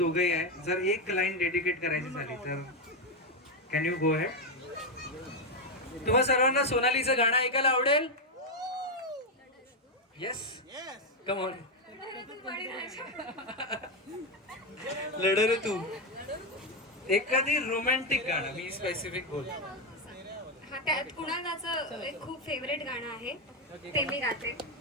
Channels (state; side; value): normal; both; correlation 0.06